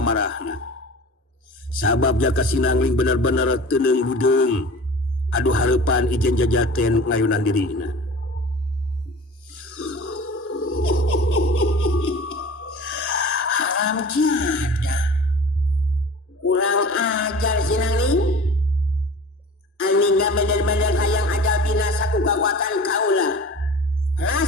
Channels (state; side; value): normal; both; correlation 0.40